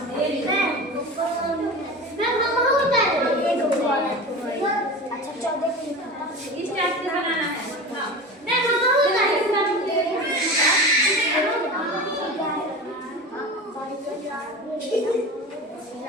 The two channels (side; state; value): both; normal; correlation 0.31